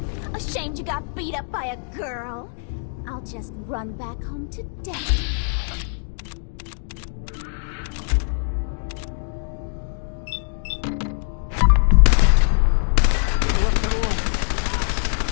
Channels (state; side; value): silent; right; 63 dB below the other